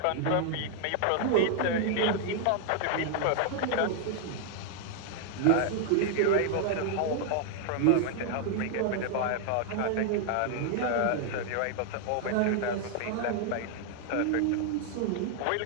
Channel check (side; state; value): both; different; correlation 0.00